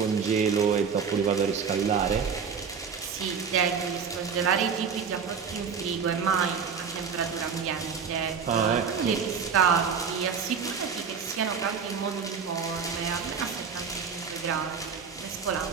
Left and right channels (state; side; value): quieter; left; 6.3 dB